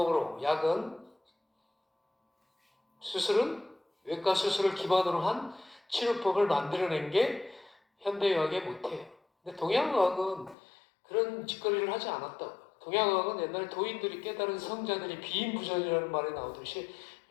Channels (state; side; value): drops out; right; at 10.6 s